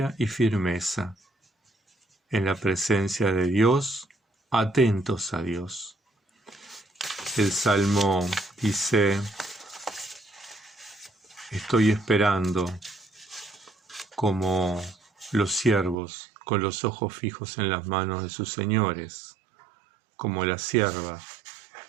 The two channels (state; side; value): drops out; left; at 16.0 s